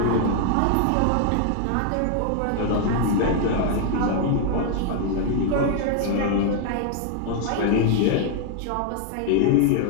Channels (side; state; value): both; different; correlation 0.00